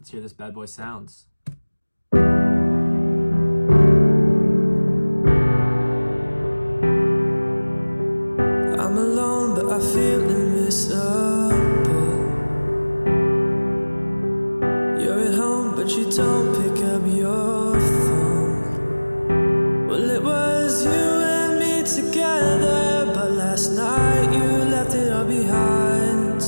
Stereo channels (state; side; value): inverted; both; correlation -1.00